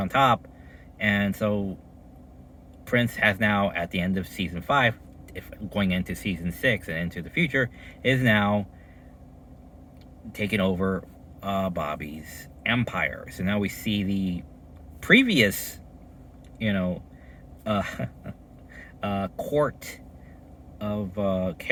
top. And so Prince has now, at the end of season 5, if going into season 6 and into the future, is now taken over Bobby's empire. So now we see the previous, you know, court of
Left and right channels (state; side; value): identical; both; correlation 1.00